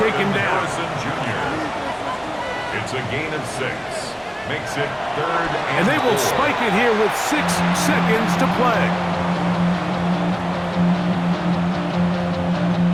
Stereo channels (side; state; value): both; identical; correlation 1.00